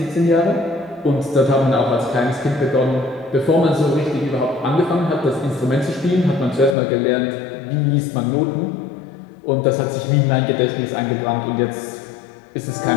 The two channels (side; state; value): right; drops out; at 6.8 s